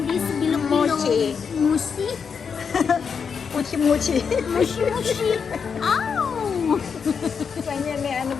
this bilog-bilog. Mochi. Mushi? Muchi-muchi. Mushi-mushi. Ow! Kanya may ano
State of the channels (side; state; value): right; quieter; 6.2 dB